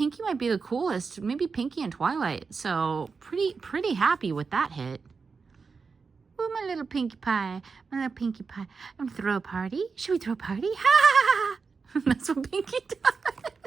might be the coolest. Maybe Pinkie and Twilight. So pretty happy with that hit. Ooh, my little Pinkie Pie. My little Pinkie Pie. I'm gonna throw a party. Should we throw a party? Ha! That's what Pinkie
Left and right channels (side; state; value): left; quieter; 5.0 dB